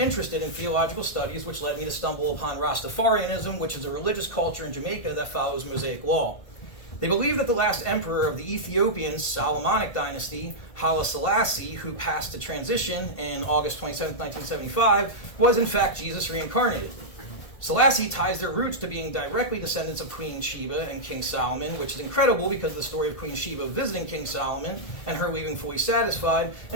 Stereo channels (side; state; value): right; late; 1.5 ms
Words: in theological studies, which led me to stumble upon Rastafarianism, which is a religious culture in Jamaica that follows Mosaic law. They believe that the last emperor of the Ethiopian Solomonic dynasty, Haile Selassie, who passed to transition in August 27, 1975, was in fact Jesus reincarnated. Selassie ties their roots to being directly descendants of Queen Sheba and King Solomon, which is incredible because of the story of Queen Sheba visiting King Solomon and her leaving fully satisfied,